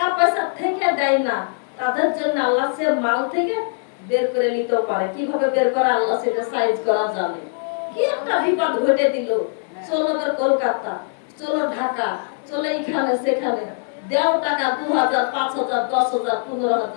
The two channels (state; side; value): silent; right; digital silence